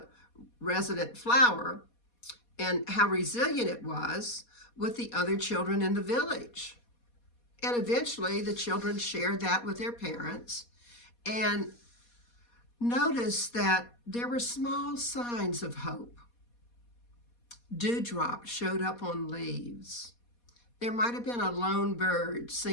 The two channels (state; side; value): late; right; 4.2 ms